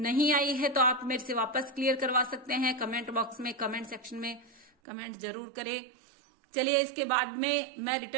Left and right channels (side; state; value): left; drops out; at 4.7 s